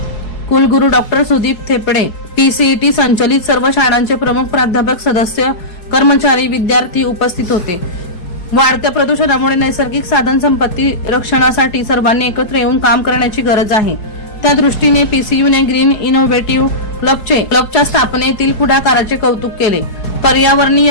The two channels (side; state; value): right; late; 4.7 ms